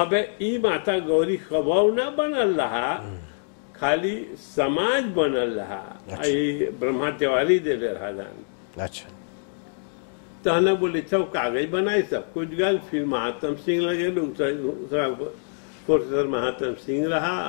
ई माता गौरी खबाव ना बनल रहा, खाली समाज बनल रहा। आई ब्रह्मा तिवारी दे रहा दान। अच्छा तो हमने बोले अच्छा कागज बनाए सब कुछ गल। फिर महात्म सिंह लगे प्रोफेसर महात्म सिंह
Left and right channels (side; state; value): right; silent; digital silence